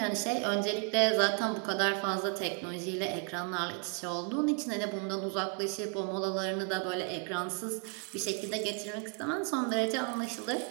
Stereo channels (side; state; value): left; quieter; 38.2 dB